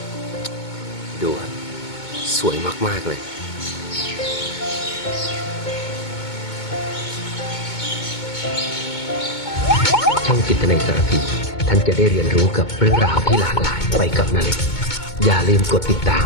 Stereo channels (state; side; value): late; right; 2.2 ms